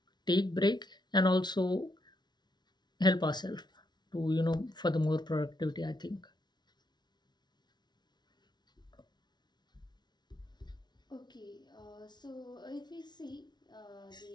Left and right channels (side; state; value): right; late; 0.20 ms